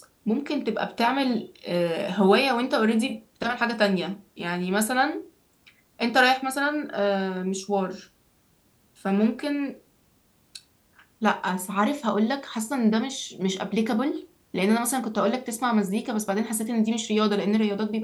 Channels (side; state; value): both; identical; correlation 1.00